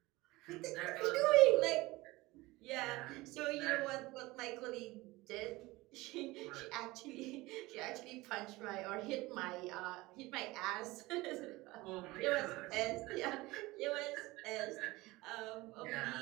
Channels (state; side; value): quieter; left; 20.5 dB